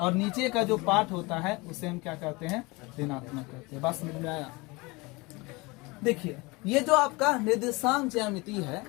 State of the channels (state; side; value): quieter; right; 24.7 dB